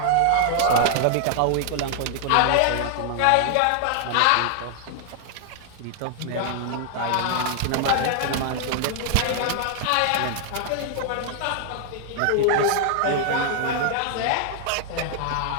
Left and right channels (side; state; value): both; different; correlation 0.00